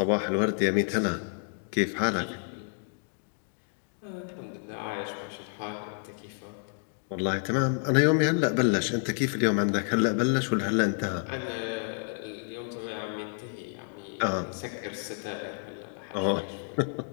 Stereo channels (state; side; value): silent; right; 58 dB below the other